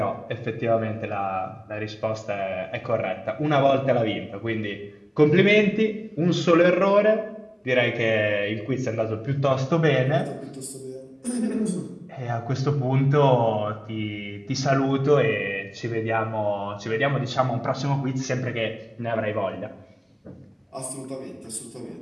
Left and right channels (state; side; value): identical; both; correlation 1.00